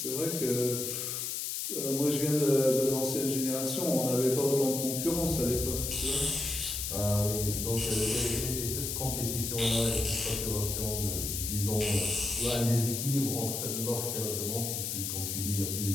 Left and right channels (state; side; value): noise; left; hiss, 3 dB below the sound